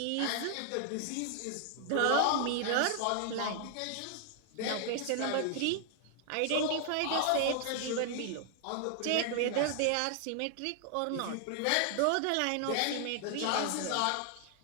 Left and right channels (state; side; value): different; both; correlation 0.00